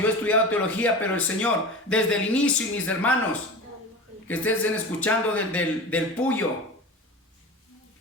he estudiado teología, pero el Señor, desde el inicio, y mis hermanos que estén escuchando del Puyo,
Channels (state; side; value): normal; both; correlation 0.31